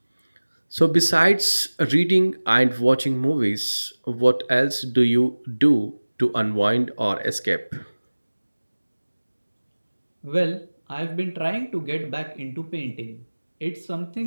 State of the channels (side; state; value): both; inverted; correlation -1.00